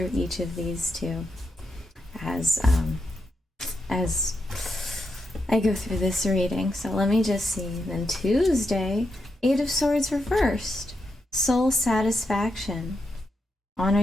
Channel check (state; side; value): normal; both; correlation 0.84